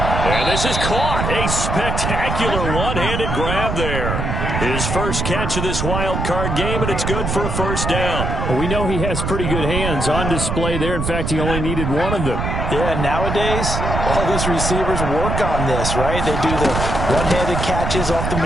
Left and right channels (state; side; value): noise; right; rumble, 2 dB below the sound